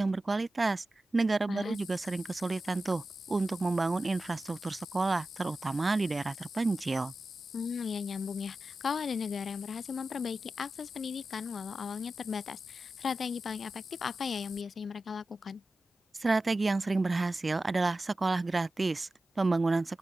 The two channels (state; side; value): normal; both; correlation 0.93